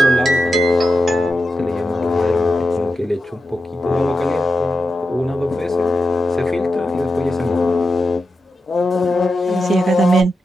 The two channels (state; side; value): normal; both; correlation 0.89